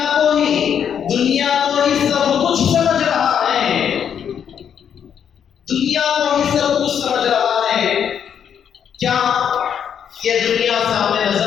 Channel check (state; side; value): quieter; right; 8.3 dB